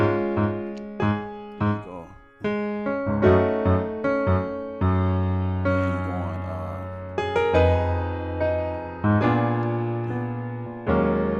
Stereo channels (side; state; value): both; identical; correlation 1.00